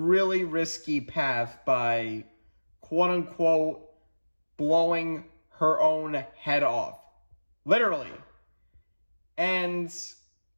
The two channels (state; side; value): inverted; both; correlation -1.00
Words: risky path by, quote-unquote, blowing her own head off. Literally. And